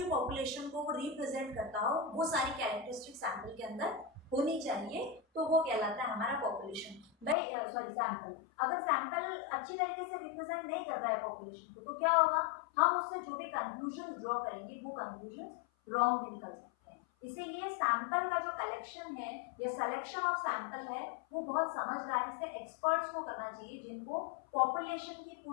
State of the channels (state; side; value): drops out; right; at 7.4 s